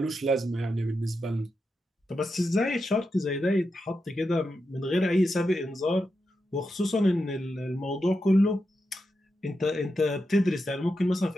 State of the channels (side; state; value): both; normal; correlation 0.87